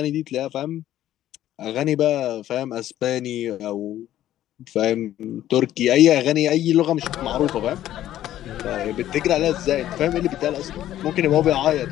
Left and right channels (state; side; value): quieter; right; 12.7 dB